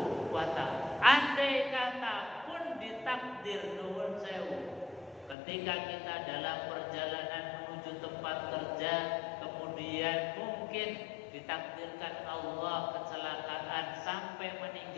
wa ta'ala. Andai kata pun ditakdir nuwun sewu, ketika kita dalam perjalanan menuju tempat kerja, kemudian mungkin ditakdirkan Allah kecelakaan sampai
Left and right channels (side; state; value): right; drops out; at 5.4 s